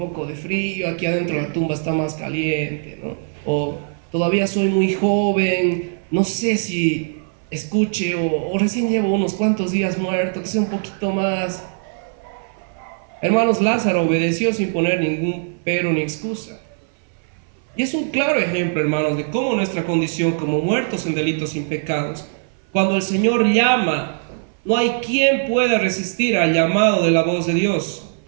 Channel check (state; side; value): silent; left; 61 dB below the other